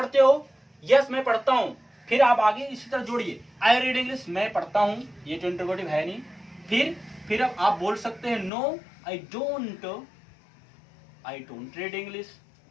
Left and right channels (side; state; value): right; drops out; at 8.5 s